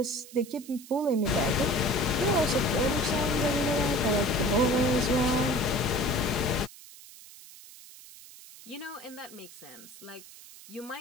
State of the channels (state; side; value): noise; right; hiss, 18 dB below the sound